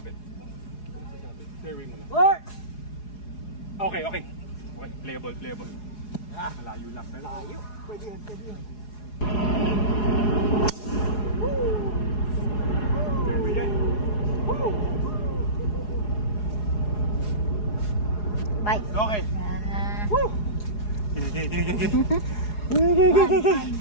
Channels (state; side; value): late; right; 4.8 ms